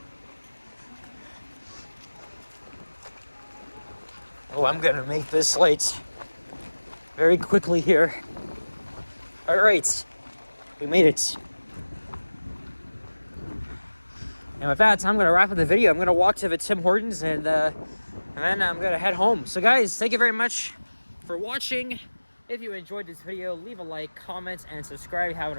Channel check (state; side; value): inverted; both; correlation -1.00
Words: Oh, I'm gonna make this light very quickly here. All right. We made it. And with that, I'm going to wrap up the video. I'm going to walk to the Tim Hortons and then I'm going to head home. So guys, thank you very much for watching. If you enjoyed this video, leave a like, comment, and subscribe if you haven't